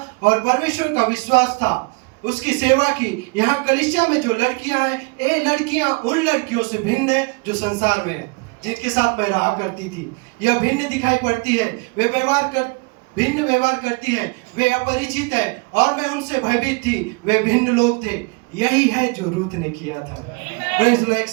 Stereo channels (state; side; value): quieter; left; 30.3 dB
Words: और परमेश्वर का विश्वास था, उसकी सेवा की। यहाँ कलीसिया में जो लड़कियां हैं, ये लड़कियां उन लड़कियों से भिन्न है जो संसार में है, जिनके साथ मैं रहा करती थी। यह भिन्न दिखाई पड़ती है। वे भिन्न व्यवहार करती हैं, वे अपरिचित है और मैं उनसे भयभीत थी। वे भिन्न लोग थे। यही है जो रूथ ने किया था। एक